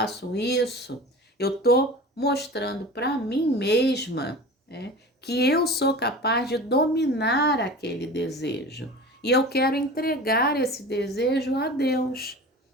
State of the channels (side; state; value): both; normal; correlation 0.36